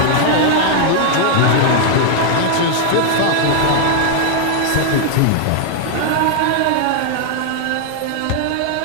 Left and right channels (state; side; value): different; both; correlation 0.00